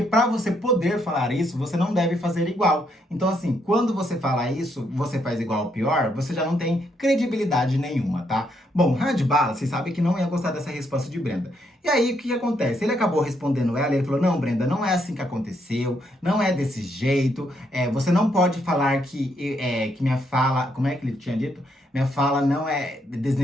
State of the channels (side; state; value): both; normal; correlation 0.75